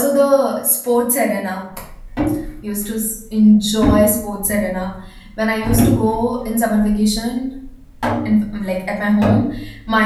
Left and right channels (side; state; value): both; identical; correlation 1.00